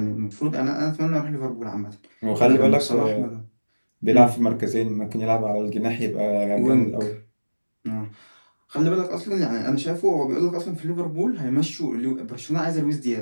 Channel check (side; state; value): both; inverted; correlation -1.00